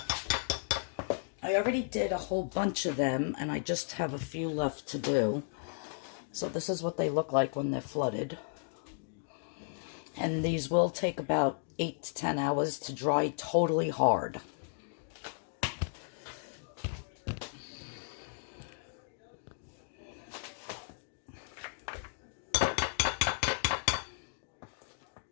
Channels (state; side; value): silent; right; digital silence